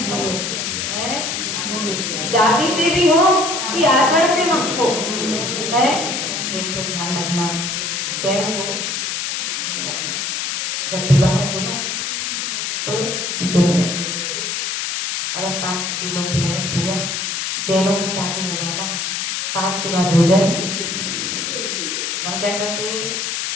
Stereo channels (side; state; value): left; noise; hiss, 2 dB below the sound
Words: जाति से भी हो कि आचरण से मत हो, है। देखो ध्यान रखना, जैन हो ध्यान रखो, जब विवाह में बोला तो दिन में भोजन करो। अदर कास्ट के लोग भी आए, भैया जैनों की शादी में जाना है, 7 के बाद भोजन। हम क्या करते,